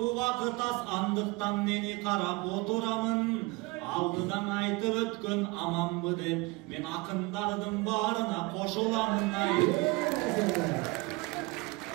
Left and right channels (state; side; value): quieter; left; 24.5 dB